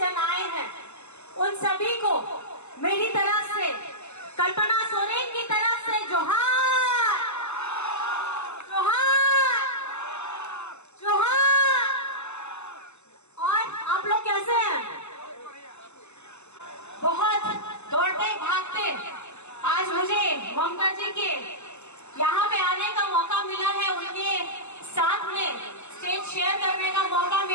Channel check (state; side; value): late; right; 0.82 ms